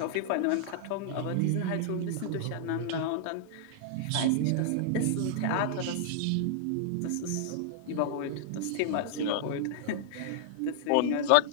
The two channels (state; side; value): different; both; correlation -0.01